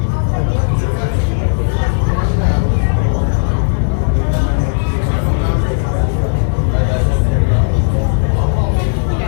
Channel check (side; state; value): right; silent; 70 dB below the other